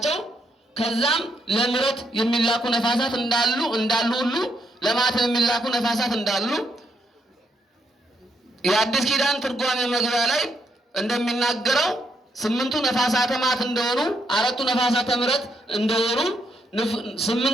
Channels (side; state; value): both; normal; correlation 0.77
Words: ከዛም ለምሕረት የሚላኩ ነፋሳት እንዳሉ ሁሉ ለማተም የሚላኩ ነፋሳት እንዳሉ የአዲስ ኪዳን ትርጓሜ መግቢያ ላይ እንደሚናገረው 8ቱ ነፋሳተ መዓት እንደሆኑ፣ 4ቱ ነፋሳተ ምሕረት እንደሆኑ፣